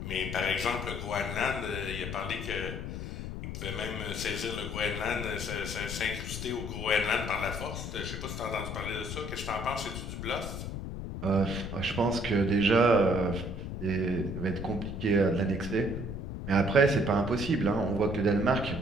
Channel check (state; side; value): noise; left; rumble, 6 dB below the sound